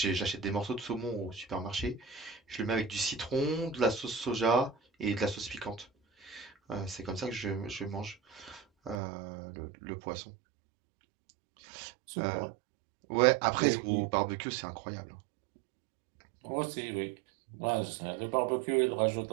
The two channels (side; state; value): left; drops out; at 9.0 s